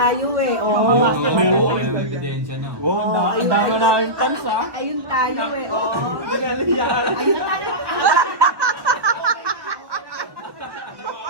eh. Oh. Ebidensya na. Wow, ang dami na yung tans ah. Ayun tayo eh. Oh. Ayun tayo.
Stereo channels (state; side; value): late; left; 1.5 ms